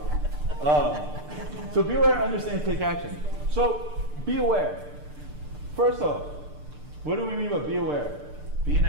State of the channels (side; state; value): left; late; 6.7 ms